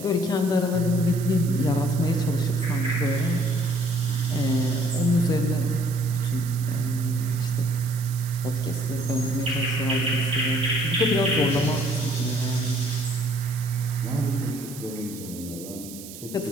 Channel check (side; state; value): right; noise; hiss, 14 dB below the sound